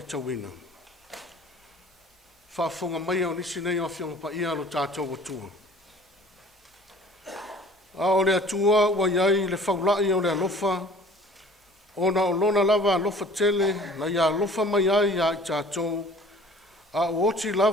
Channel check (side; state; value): both; normal; correlation 0.49